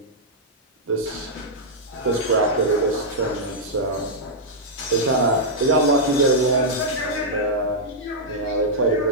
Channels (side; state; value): both; normal; correlation -0.07